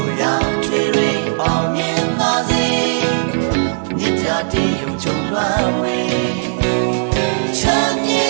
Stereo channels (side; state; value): left; silent; 68 dB below the other